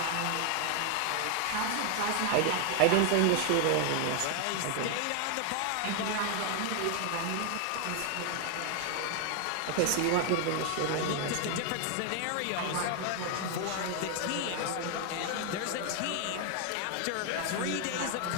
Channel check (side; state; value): both; different; correlation 0.00